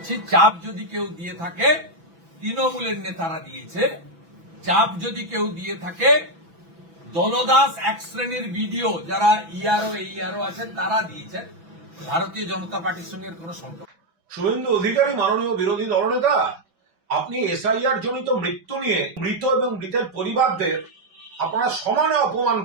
চাপ যদি কেউ দিয়ে থাকে, তৃণমূলের নেতারা দিয়েছে। চাপ যদি কেউ দিয়ে থাকে, দলদাস এক শ্রেণীর ভিডিও যারা ইআরও আছেন তারা দিয়েছেন। ভারতীয় জনতা পার্টির সঙ্গে কোনো সম্পর্ক। শুভেন্দু অধিকারী, মাননীয় বিরোধী দলনেতা, আপনি এসআইআর জনিত মৃত্যু নিয়ে মৃত এবং মৃতের পরিবারদের আপনারা সমানে অপমান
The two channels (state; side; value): late; left; 6.0 ms